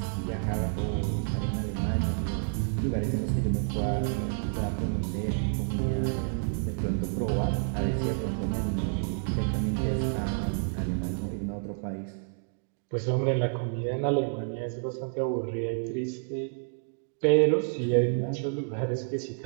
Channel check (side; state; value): left; silent; digital silence